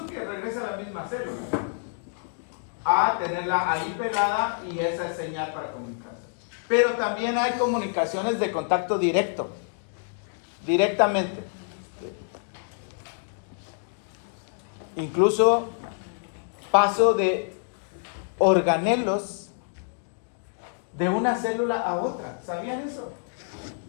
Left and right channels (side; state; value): right; silent; digital silence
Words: que regrese a la misma célula, a tenerla ahí pegada y esa es señal para comunicarse. Pero también hay comunicaciones de contacto directo, directamente. Incluso paso de organelos de una célula a otra. ¿Sabían eso?